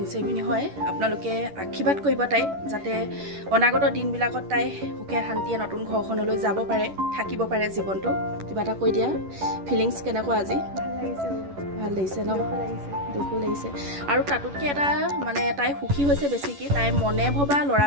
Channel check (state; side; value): late; left; 11 ms